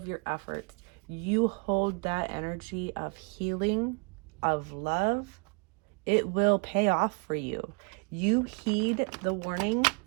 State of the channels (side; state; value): left; quieter; 34.0 dB